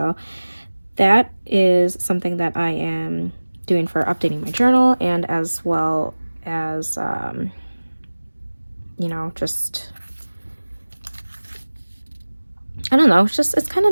that is something that I am doing for updating my journal, and as well as, you know, just, I don't know, it's kind of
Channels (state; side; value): inverted; both; correlation -1.00